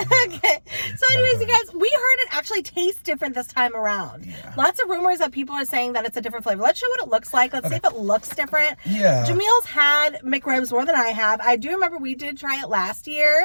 Okay. So anyways, you guys, we heard it actually tastes different this time around. Yeah. Lots of rumors that people are saying that it's a different flavor. Let's show what it looks like. Let's see if it looks different. Yeah. Jamil's had McRibs more than I have. I do remember we did try it last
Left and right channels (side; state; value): both; inverted; correlation -1.00